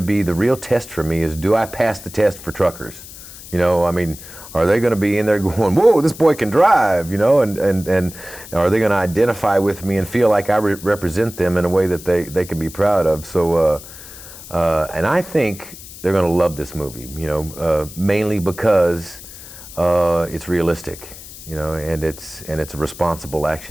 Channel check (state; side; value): noise; left; hiss, 16 dB below the sound